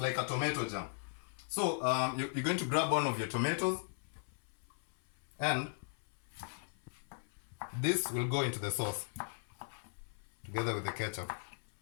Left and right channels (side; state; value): right; silent; 53 dB below the other